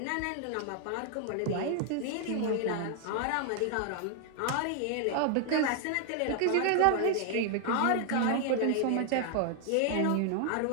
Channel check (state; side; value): different; both; correlation 0.00